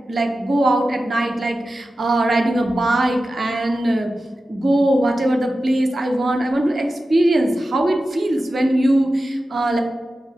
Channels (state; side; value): normal; both; correlation 0.93